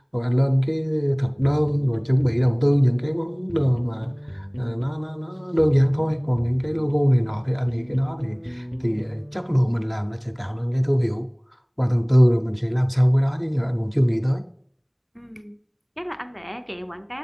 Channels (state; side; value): identical; both; correlation 1.00